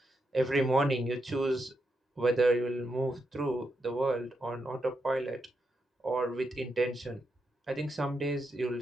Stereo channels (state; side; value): normal; both; correlation 0.84